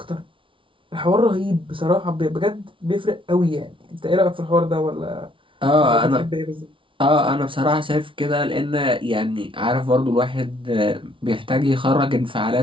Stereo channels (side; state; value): left; late; 0.25 ms